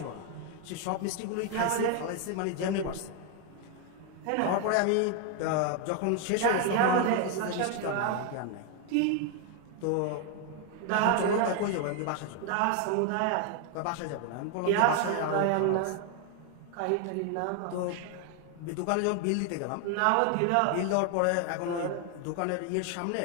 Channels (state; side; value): different; both; correlation 0.00